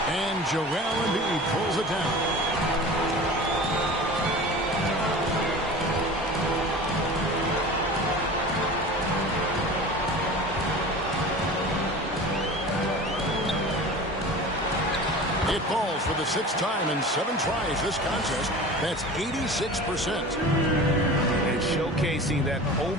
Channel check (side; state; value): both; normal; correlation 0.36